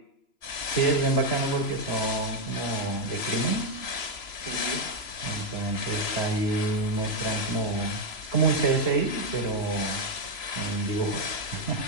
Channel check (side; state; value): right; late; 3.0 ms